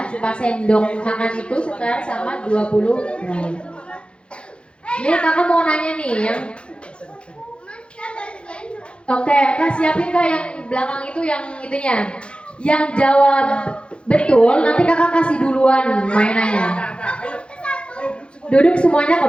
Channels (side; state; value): right; late; 0.057 ms